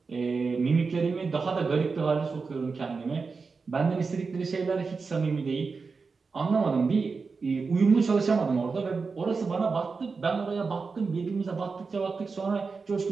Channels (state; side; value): quieter; left; 4.7 dB